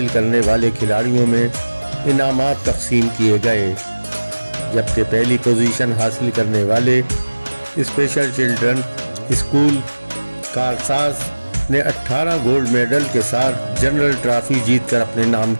करने वाले खिलाड़ियों में इनामात तकसीम किए गए, जबकि पहली पोजीशन हासिल करने वाले स्पेशल चिल्ड्रन स्कूल कारसाज ने 18 गोल्ड मेडल के साथ जनरल ट्रॉफी जीतकर अपने नाम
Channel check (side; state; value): both; inverted; correlation -1.00